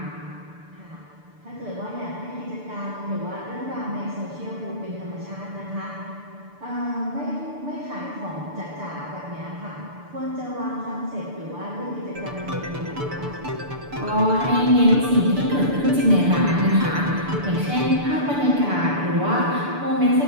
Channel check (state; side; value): late; left; 6.9 ms